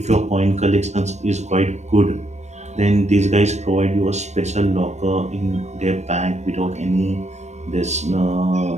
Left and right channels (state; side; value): late; left; 0.33 ms